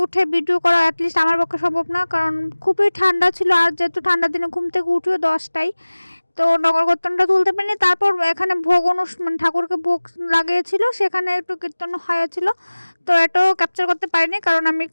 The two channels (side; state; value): both; inverted; correlation -1.00